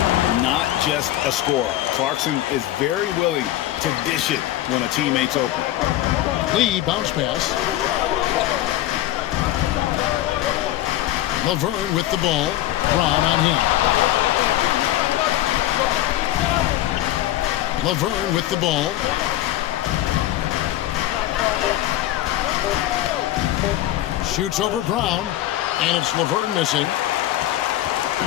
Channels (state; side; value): quieter; right; 14.2 dB